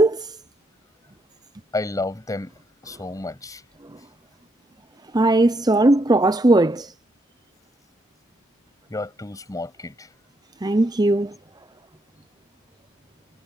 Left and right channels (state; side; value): normal; both; correlation 0.77